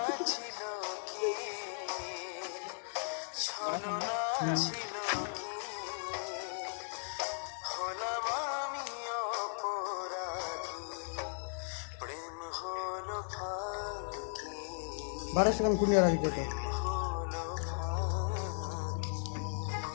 ছিল কি ছলনা ছিল কি হলাম আমি অপরাধী প্রেম হলো ফাঁকি বারে সেখান কুনিয়া রাখি তো হলো ফাঁকি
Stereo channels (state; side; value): silent; right; digital silence